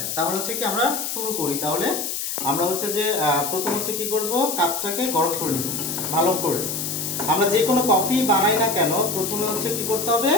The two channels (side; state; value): left; noise; hiss, 3 dB below the sound